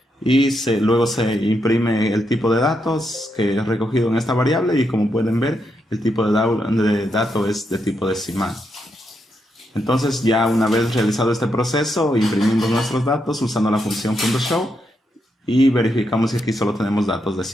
Y luego se imprime el tipo de datos que es recogido en esta variable, y como pueden ver, el tipo de dato es de tipo decimal. Entonces, ya una vez realizado este proceso, imprimimos nuestros datos usando la función .show y verificamos que aquí solo tenemos datos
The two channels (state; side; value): normal; both; correlation 0.81